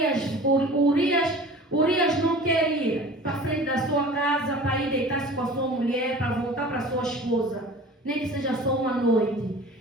não quer ir para frente da sua casa para ir deitar-se com a sua mulher, para voltar para sua esposa, nem que seja só uma noite.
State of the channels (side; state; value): both; normal; correlation 0.41